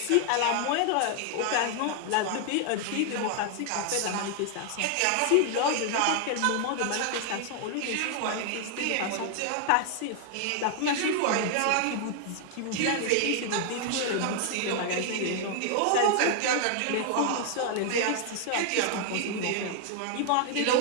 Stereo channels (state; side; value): different; both; correlation 0.00